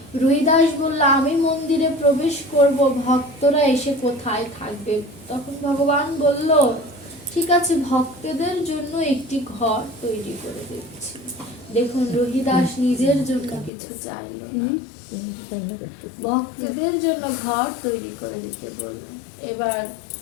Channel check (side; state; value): right; drops out; at 13.7 s